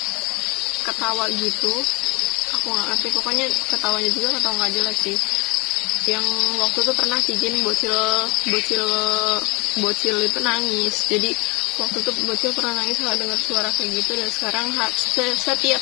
ketawa gitu. Aku nggak ngerti, pokoknya ketawanya juga ketawa nggak jelas sih. Yang waktu itu pernah Tijin bocil itu nangis. Jadi waktu itu bocil pernah nangis kalau dengar suara kayak gitu, dan sekarang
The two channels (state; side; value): quieter; right; 26.1 dB